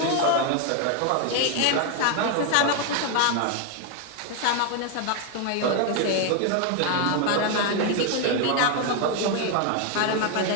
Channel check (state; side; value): different; both; correlation 0.01